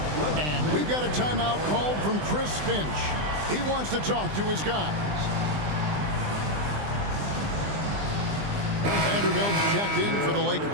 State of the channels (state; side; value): late; left; 20 ms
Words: And we've got a timeout called from Chris Finch. He wants to talk to his guys. Vanderbilt's checked in for the